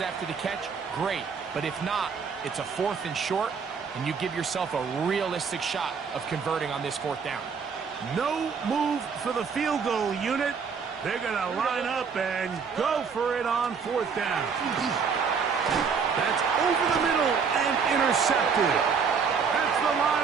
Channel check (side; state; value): left; quieter; 5.9 dB